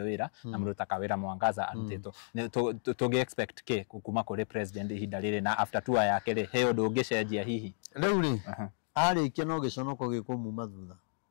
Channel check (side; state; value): right; silent; digital silence